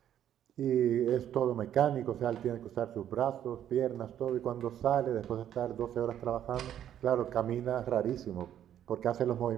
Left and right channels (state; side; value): quieter; left; 10.6 dB